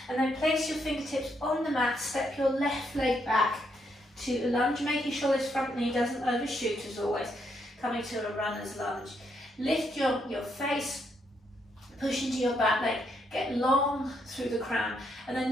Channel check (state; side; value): normal; both; correlation 0.76